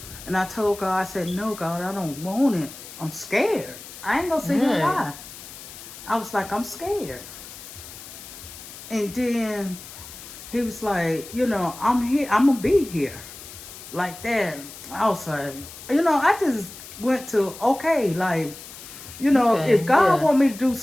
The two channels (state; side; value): noise; left; hiss, 15 dB below the sound